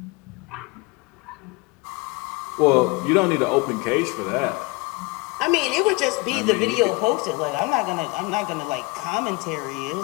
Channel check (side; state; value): right; quieter; 25.3 dB